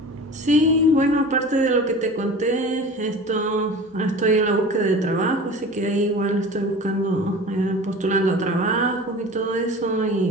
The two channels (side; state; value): both; normal; correlation 0.37